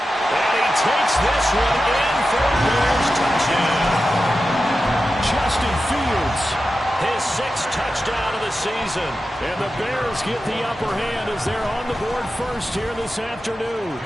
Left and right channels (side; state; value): both; normal; correlation 0.92